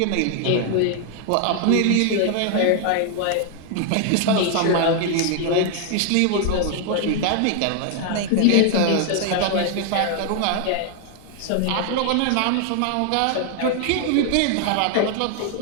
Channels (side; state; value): both; different; correlation 0.00